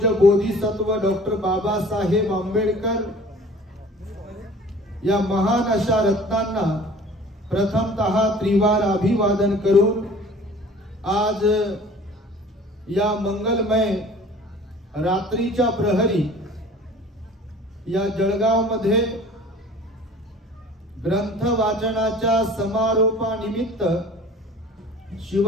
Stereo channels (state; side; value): normal; both; correlation 0.46